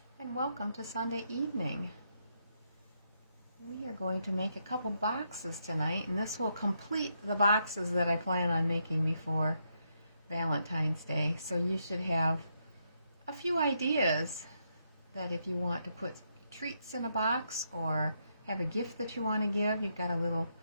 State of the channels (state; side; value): inverted; both; correlation -0.79